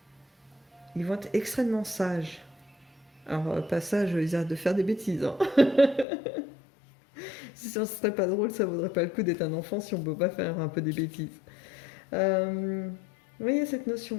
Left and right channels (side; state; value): right; drops out; at 6.1 s